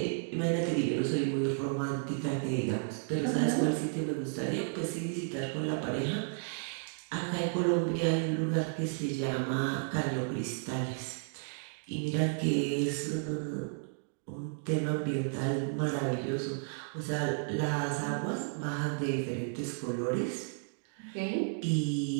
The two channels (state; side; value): silent; left; digital silence